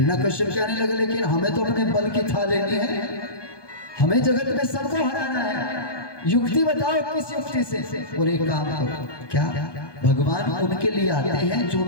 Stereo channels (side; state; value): right; late; 1.2 ms